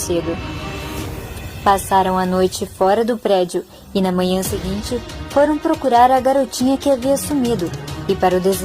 Passaram a noite fora do prédio e na manhã seguinte foram procurar a garotinha que havia sumido. E para o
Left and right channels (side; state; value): both; identical; correlation 1.00